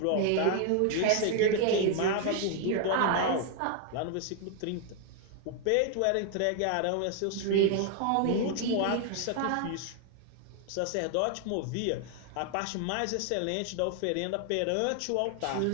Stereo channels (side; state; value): both; different; correlation 0.00